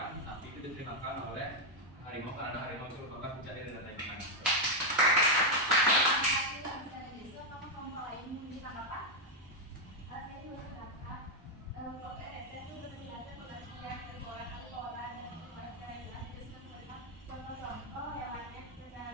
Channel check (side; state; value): both; normal; correlation 0.01